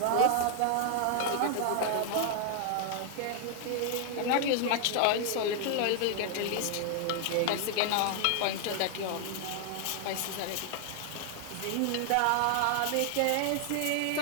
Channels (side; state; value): both; different; correlation 0.00